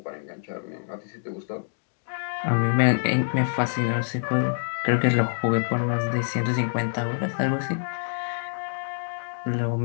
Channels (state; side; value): silent; right; digital silence